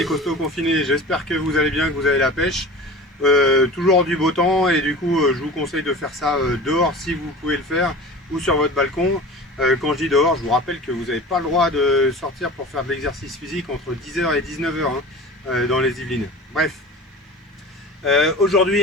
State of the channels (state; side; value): normal; both; correlation 0.36